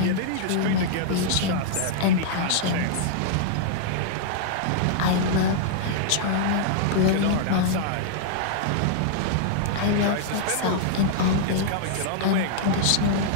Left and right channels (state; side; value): different; both; correlation -0.01